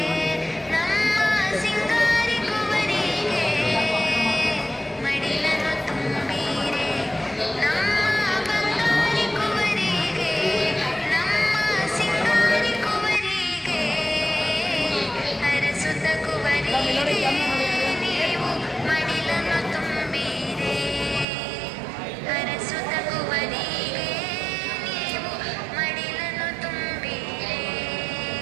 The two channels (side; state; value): left; drops out; at 21.2 s